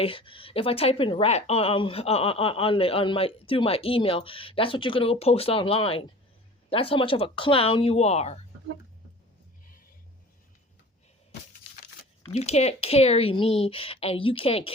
if I type in rat on my through my email, that's what you're gonna go post online. That's how much of a clown you are. You can't carry me, and you can't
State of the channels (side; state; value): both; normal; correlation 0.42